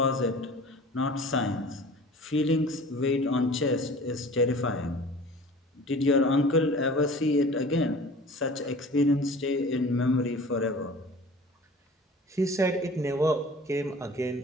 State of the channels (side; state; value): both; normal; correlation 0.43